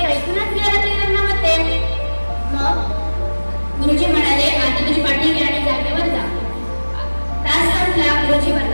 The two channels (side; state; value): both; inverted; correlation -1.00